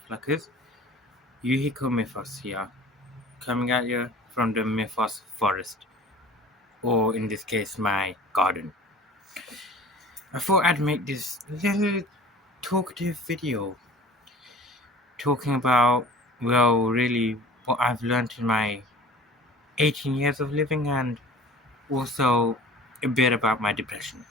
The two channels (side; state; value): both; normal; correlation 0.43